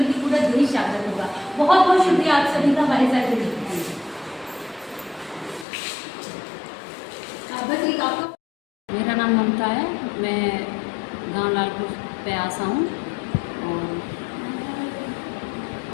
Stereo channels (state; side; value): drops out; right; at 5.7 s